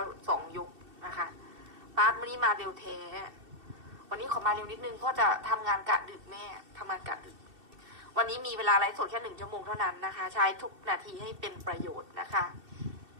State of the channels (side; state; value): left; late; 2.7 ms